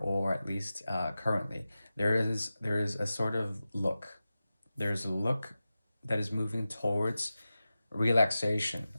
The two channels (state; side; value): inverted; both; correlation -0.94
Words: at least currently, there is a sort of look. There's a look that is moving towards relaxation